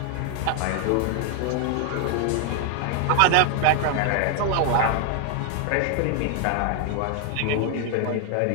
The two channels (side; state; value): both; different; correlation 0.00